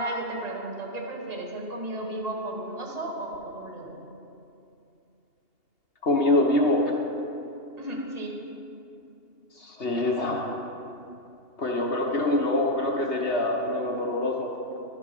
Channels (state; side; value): late; right; 2.8 ms